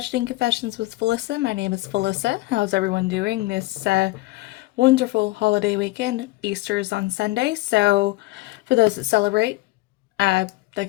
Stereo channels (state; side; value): quieter; right; 19.7 dB